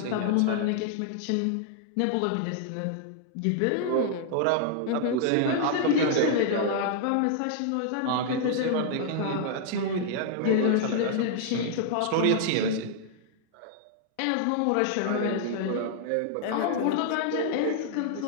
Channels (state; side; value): different; both; correlation -0.01